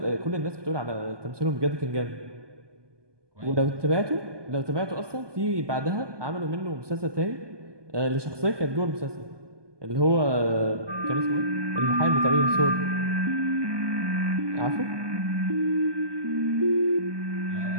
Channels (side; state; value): left; late; 1.2 ms